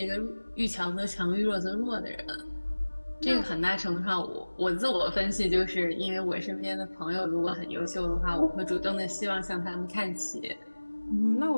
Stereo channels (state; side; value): inverted; both; correlation -1.00